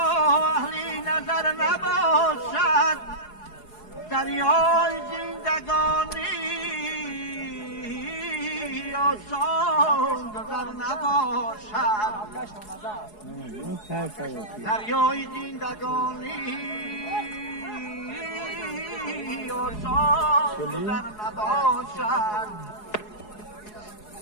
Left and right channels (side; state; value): right; late; 4.7 ms